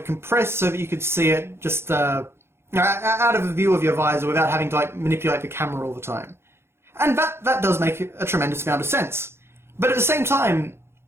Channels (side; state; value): left; late; 0.12 ms